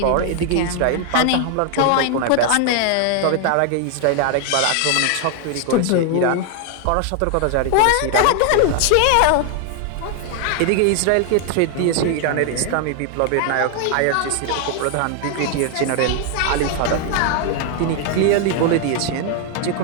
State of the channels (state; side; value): different; both; correlation 0.00